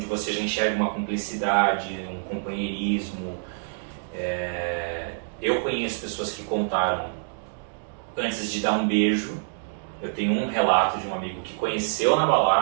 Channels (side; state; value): left; silent; digital silence